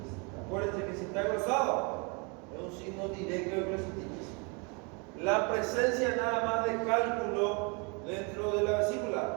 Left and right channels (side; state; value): left; quieter; 32.2 dB